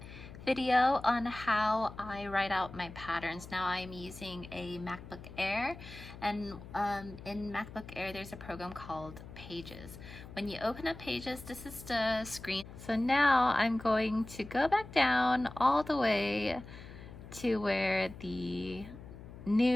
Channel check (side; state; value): left; noise; hum, 15 dB below the sound